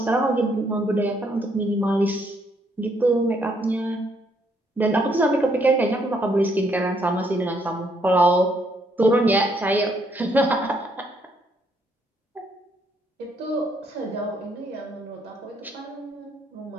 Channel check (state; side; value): normal; both; correlation 0.71